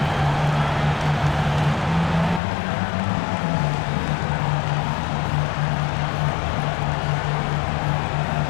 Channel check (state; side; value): drops out; right; at 2.4 s